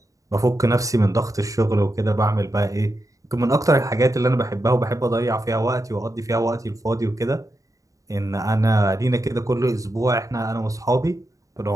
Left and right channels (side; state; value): left; late; 0.16 ms